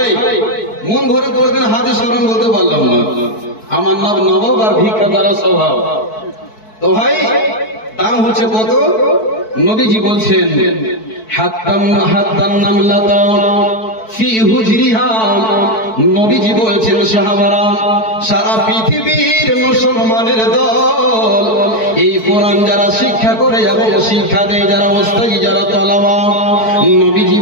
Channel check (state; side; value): late; right; 4.6 ms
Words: মন ভরে কোনদিন হাদিস কোরআন বলতে পারলাম না, আমার নাম নবাব আর ভিক্ষা করা স্বভাব। তো ভাই দাম হচ্ছে কত? নবীজি বলছেন নবীজি বলছেন সাহাবারা, সারা পৃথিবীর মুসলমানের দল এই কোরআন যারা শিক্ষা করে এবং শিক্ষা দেয়, যারা ওস্তাদি, যারা তলাবা, নবীজি